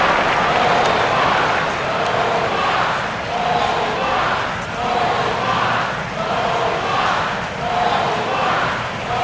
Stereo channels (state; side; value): identical; both; correlation 1.00